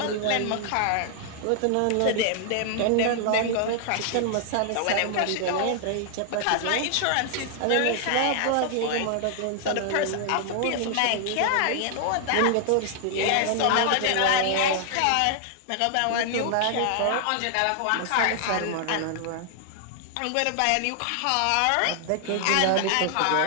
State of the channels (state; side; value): different; both; correlation 0.00